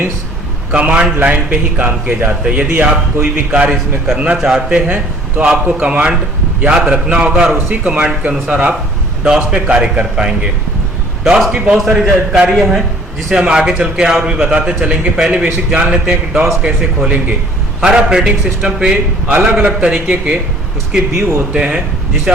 कमांड लाइन पे ही काम किए जाते हैं। यदि आप कोई भी कार्य इसमें करना चाहते हैं तो आपको कमांड याद रखना होगा, और उसी कमांड के अनुसार आप डॉस पे कार्य कर पाएंगे। डॉस की बहुत सारी जानकारियाँ हैं जिसे हम आगे चल के और भी बताते चलेंगे। पहले बेसिक जान लेते हैं कि डॉस कैसे खोलेंगे। हर ऑपरेटिंग सिस्टम पे अलग अलग तरीके के उसके व्यू होते हैं, जिसे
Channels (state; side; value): normal; both; correlation 0.54